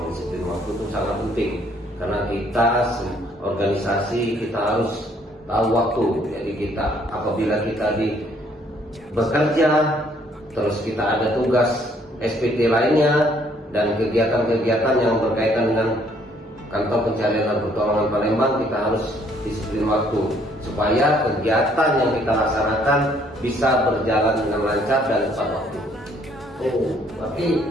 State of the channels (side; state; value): both; normal; correlation 0.64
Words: disiplin waktu itu sangat penting karena kita organisasi kita harus tahu waktu. Jadi kita apabila kita bekerja, terus kita ada tugas SPT lainnya dan kegiatan-kegiatan yang berkaitan dengan kantor pencarian dan pertolongan Palembang, kita harus disiplin waktu supaya kegiatan yang kita laksanakan bisa berjalan dengan lancar dan tepat waktu. Oh, berarti